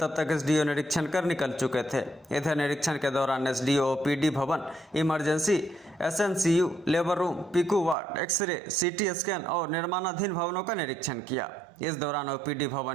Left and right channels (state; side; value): drops out; left; at 8.0 s